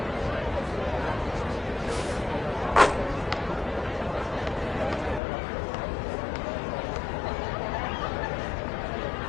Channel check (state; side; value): drops out; right; at 5.2 s